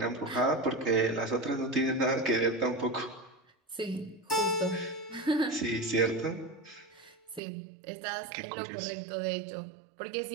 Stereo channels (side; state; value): left; drops out; at 7.4 s